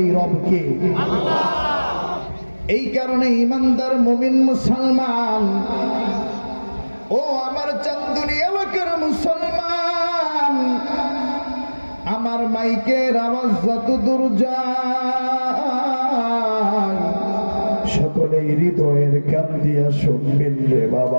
রবকে। এই কারণে ইমানদার মুমিন মুসলমান, ও আমার চান্দুনি এলাকার মুসলমান, আমার মাইকের আওয়াজ যত দূর যায় সকলে হৃদয়ের কান দিয়া শুনবেন রে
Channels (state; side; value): inverted; both; correlation -1.00